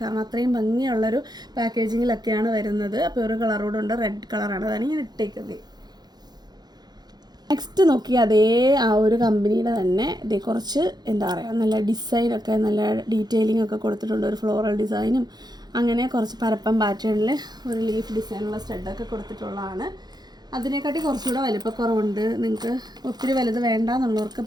കാരണം അത്രയും ഭംഗിയുള്ളൊരു പാക്കേജിങ്ങിലൊക്കെയാണ് വരുന്നത്. അപ്പോൾ ഒരു കളറോടുണ്ട്, റെഡ് കളറാണ്, അതാണ് ഞാൻ ഇട്ടേക്കുന്നത്. നെക്സ്റ്റ് നോക്കി അതേ ആ ഒരു കമ്പനിയുടെ തന്നെ ഇതേ കുറച്ച് എന്താ പറയുക നല്ല ഡിസൈനൊക്കെ നല്ല ഡീറ്റെയിലിംഗ് ഒക്കെ കൊടുത്തിട്ടുണ്ട്. ഒരു ഫ്ലോറൽ ഡിസൈനും അങ്ങനെ കുറച്ച് പരപ്പം പാറ്റേണിൽ ഒരു ലീഫ് ഡിസൈനുള്ള സ്റ്റഡൊക്കെ കൊടുത്തിട്ടുള്ളതാണ്. അതിനെക്കാട്ടി കുറച്ചുകൂടെ വലിപ്പക്കുറവുണ്ട്. നിങ്ങൾക്ക് ഒത്തിരി വലുത് വേണ്ട എന്നുള്ളവർക്ക്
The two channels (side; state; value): left; late; 0.20 ms